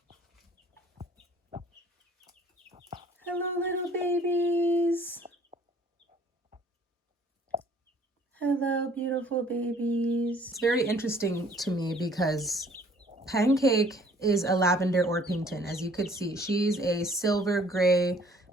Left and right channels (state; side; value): normal; both; correlation 0.57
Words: Hello, little babies. Hello, beautiful babies. It's very interesting to me because Pancake is a lavender Orpington. As you could see, she's a silver gray